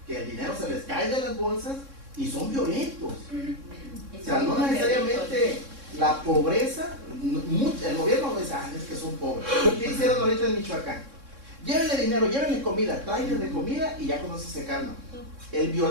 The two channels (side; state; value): left; late; 3.6 ms